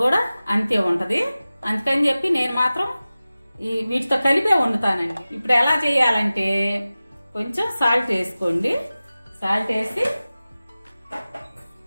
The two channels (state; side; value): inverted; both; correlation -0.97